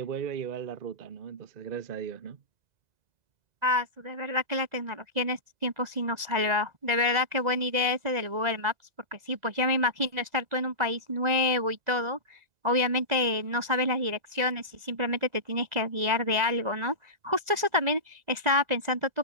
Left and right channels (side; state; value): left; late; 2.0 ms